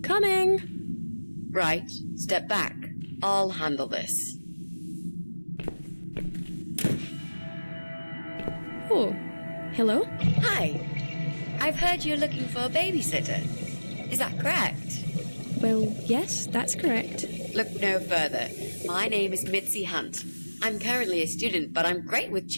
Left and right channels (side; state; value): both; inverted; correlation -1.00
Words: Coming! Right, step back. I'll handle this. Oh, hello? Hi. I've heard you're looking for a babysitter. Is that correct? Well, yes, that's correct. Look no further. My name is Mitzi Hunt. I'm currently a student, but I'm great with